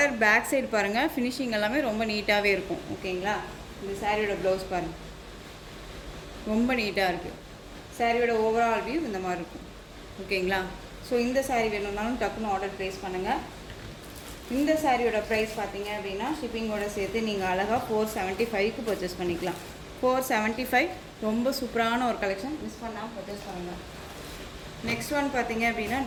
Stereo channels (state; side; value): identical; both; correlation 1.00